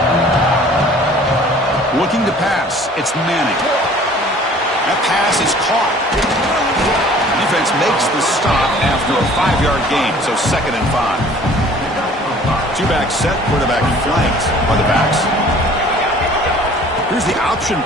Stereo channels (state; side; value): normal; both; correlation 0.51